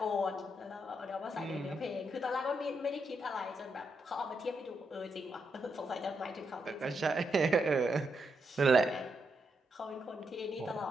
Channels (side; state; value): both; normal; correlation 0.81